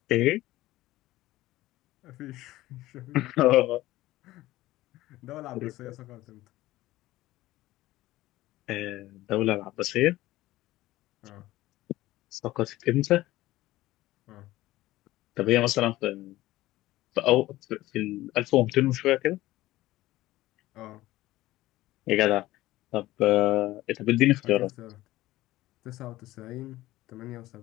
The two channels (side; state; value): right; quieter; 16.8 dB